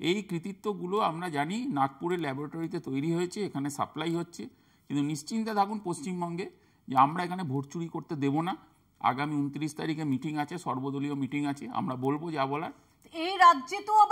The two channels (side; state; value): both; identical; correlation 1.00